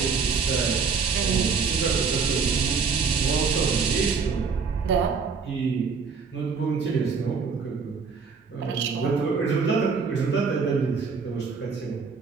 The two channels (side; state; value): left; quieter; 5.4 dB